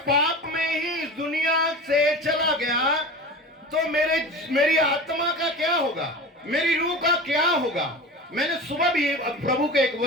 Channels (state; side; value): normal; both; correlation 0.32